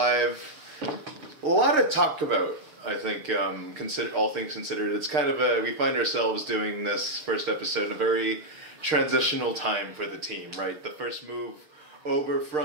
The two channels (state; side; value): late; left; 6.5 ms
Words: A lot to talk about, I think, all things considered. It's kind of we find ourselves doing this first episode in a very transitional time for the team, right? The first move over